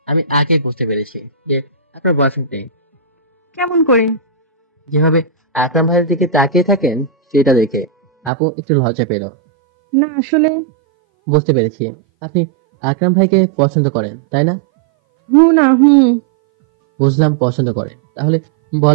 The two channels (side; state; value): left; drops out; at 8.3 s